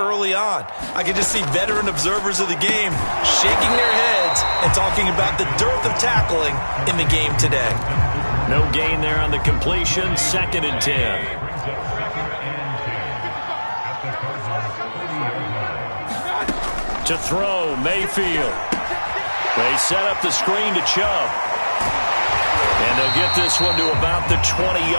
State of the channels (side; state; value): both; inverted; correlation -1.00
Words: on. I can just see veteran observers of the game shaking their heads and talking about the dearth of tackling in the game today. No gain there on the completion, 2nd and 10. To throw, Mayfield. They set up the screen to Chubb. And they'll get this one to about the